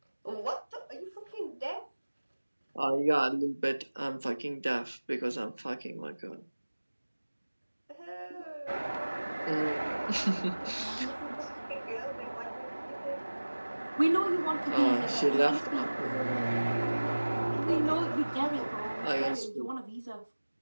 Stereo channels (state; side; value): inverted; both; correlation -1.00